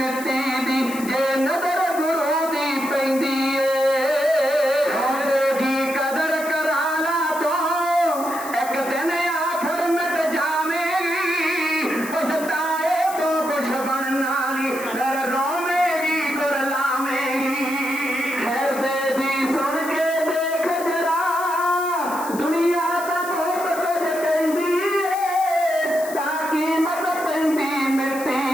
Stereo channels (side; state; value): left; noise; hiss, 13 dB below the sound